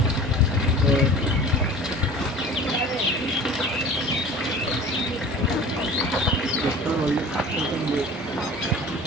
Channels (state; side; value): normal; both; correlation 0.41